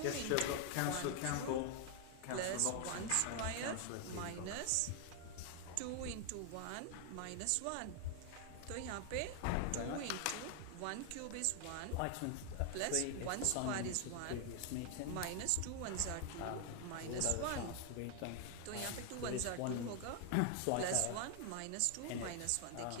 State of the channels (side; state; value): both; different; correlation 0.00